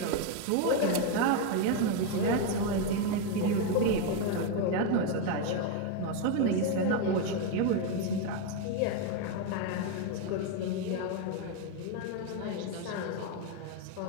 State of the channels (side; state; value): both; different; correlation 0.02